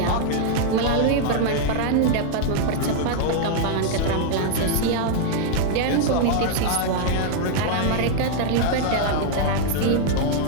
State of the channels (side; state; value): both; different; correlation 0.00